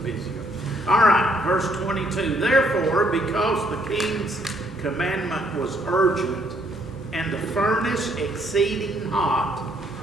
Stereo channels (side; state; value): both; normal; correlation 0.68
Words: busier. All right, verse 22. Therefore, because the king's commandment was urgent, and the furnace exceeding hot,